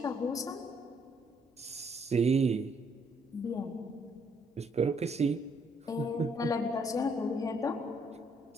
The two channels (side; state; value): both; normal; correlation 0.69